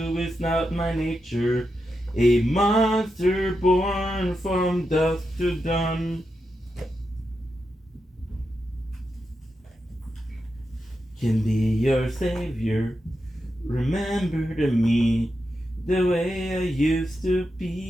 it's not my nature. A monster born from dusk to dawn. Can be your savior. Remember to me the way I used to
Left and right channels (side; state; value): both; normal; correlation 0.87